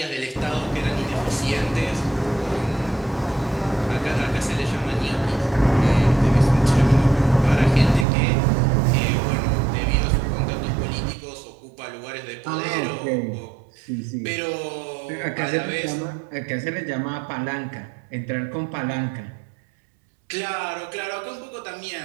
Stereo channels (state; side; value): drops out; left; at 8.1 s